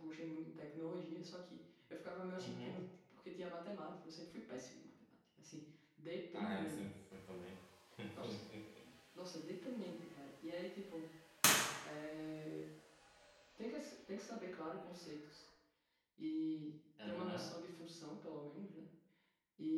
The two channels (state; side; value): identical; both; correlation 1.00